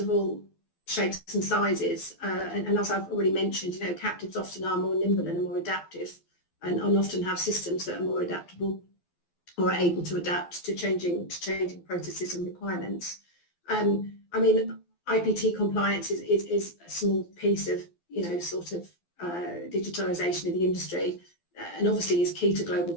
all shapes and sizes, and as I've already mentioned, captives often are more nimble and are more adaptive, and often have systems that are more adaptable or are able to adapt to changing processes and requirements. I mean, IPT compliance is a small piece of digitalisation of the industry, and obviously is key to global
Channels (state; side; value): late; right; 12 ms